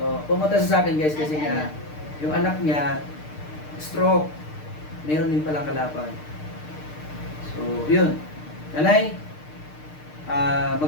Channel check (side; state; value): right; late; 6.6 ms